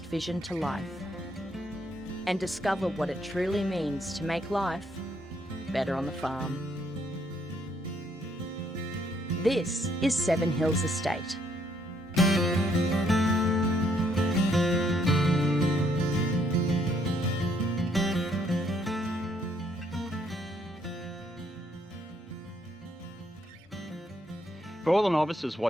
vision to life. And discover what it truly means to make life better on the farm. This is Seven Hills Estate. For all the novices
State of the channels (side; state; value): both; normal; correlation 0.70